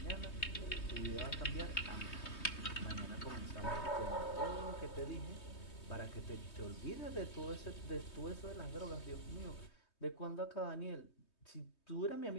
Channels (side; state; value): right; late; 3.2 ms